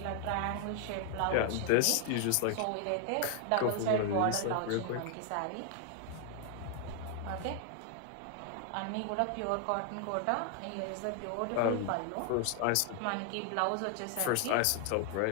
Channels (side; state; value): both; different; correlation 0.00